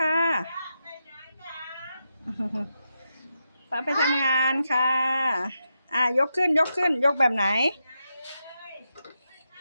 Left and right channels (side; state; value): both; inverted; correlation -0.87